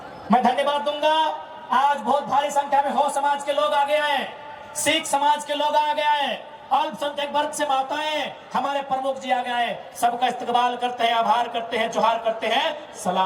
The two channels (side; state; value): both; identical; correlation 1.00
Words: मैं धन्यवाद दूंगा। आज बहुत भारी संख्या में हो समाज के लोग आ गए हैं, सिख समाज के लोग आ गए हैं, अल्पसंख्यक वर्ग से माताएं, हमारे प्रमुख जी आ गए हैं। सबका इस्तकबाल करते हैं, आभार करते हैं, जोहार करते हैं,